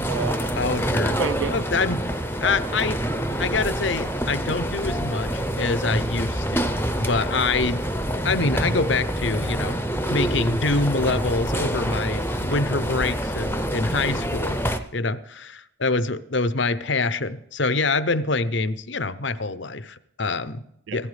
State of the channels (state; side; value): normal; both; correlation 0.42